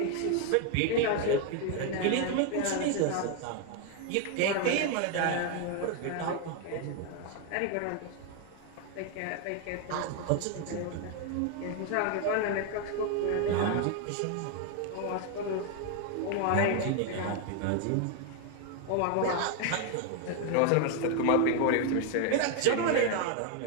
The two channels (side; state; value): both; different; correlation 0.01